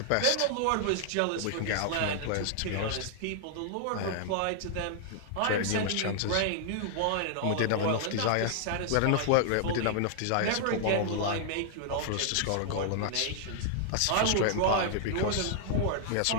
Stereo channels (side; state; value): both; different; correlation -0.01